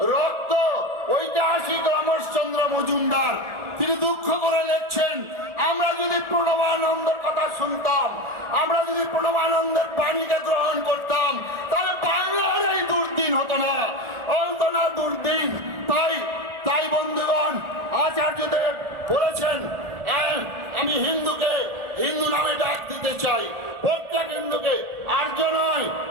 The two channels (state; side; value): late; left; 1.4 ms